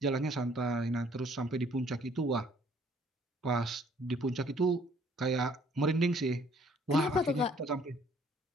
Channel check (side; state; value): both; normal; correlation 0.60